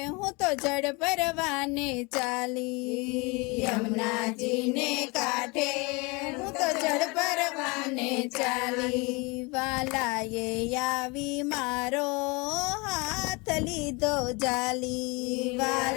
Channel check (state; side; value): quieter; right; 27.7 dB